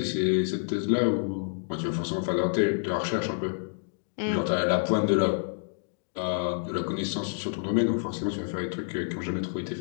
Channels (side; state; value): right; silent; digital silence